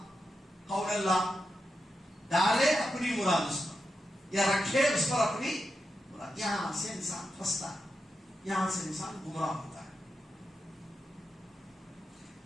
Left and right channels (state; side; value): normal; both; correlation 0.88